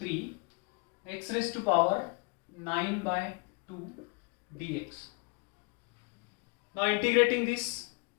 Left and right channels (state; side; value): quieter; right; 31.3 dB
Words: x raised to power 9 by 2 dx. Now integrating this,